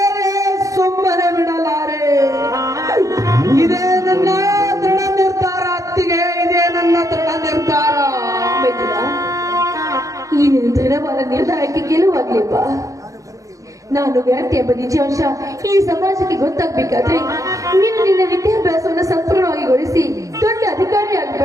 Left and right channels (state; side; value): late; left; 0.16 ms